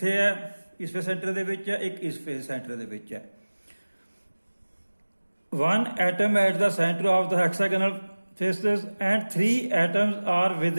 ਹੈ ਇਸ ਫੇਸ ਸੈਂਟਰ ਦੇ ਵਿੱਚ ਹੈ, ਇੱਕ ਇਸ ਫੇਸ ਸੈਂਟਰ ਦੇ ਵਿੱਚ ਹੈ। One atom at the center of the hexagonal faces and 3 atoms are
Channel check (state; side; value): inverted; both; correlation -1.00